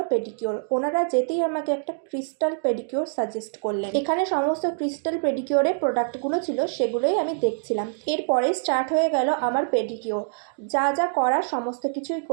পেডিকিওর। ওনারা যেতেই আমাকে একটা ক্রিস্টাল পেডিকিওর সাজেস্ট করলেন। এখানে সমস্ত ক্রিস্টাল পেডিকিওরের প্রোডাক্টগুলো ছিল, সেগুলোই আমি দেখছিলাম। এরপরে স্টার্ট হয়ে গেল আমার পেডিকিওর। যা যা করার সমস্ত কিছুই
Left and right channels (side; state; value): left; silent; digital silence